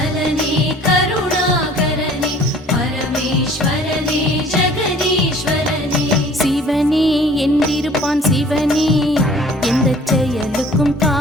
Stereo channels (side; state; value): both; normal; correlation 0.51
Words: கருணாகரனே பரமேஸ்வரனே ஜெகதீஸ்வரனே. சிவனே என்றிருப்பான் சிவனே, எந்த செயலுக்கும்